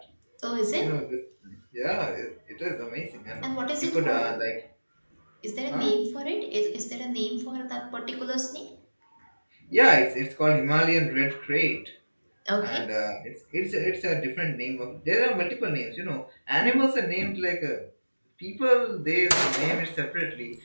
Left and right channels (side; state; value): both; inverted; correlation -1.00